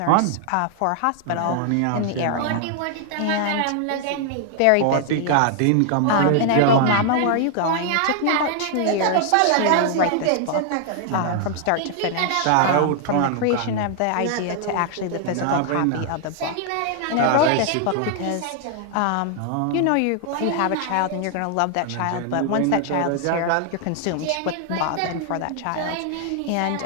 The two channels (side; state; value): both; different; correlation 0.00